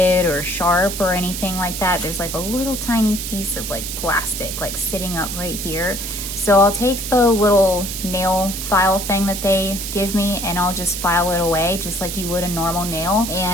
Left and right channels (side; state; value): right; noise; hiss, 6 dB below the sound